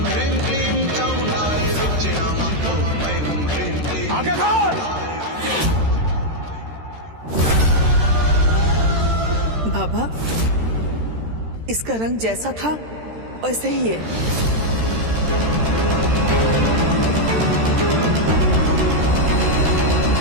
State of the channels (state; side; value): late; left; 13 ms